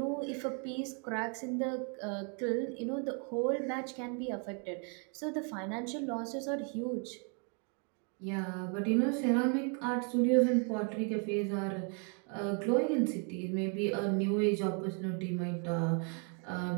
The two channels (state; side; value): quieter; left; 39.0 dB